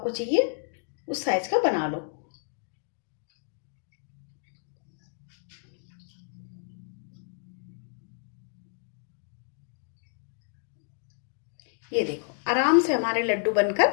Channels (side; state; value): right; silent; digital silence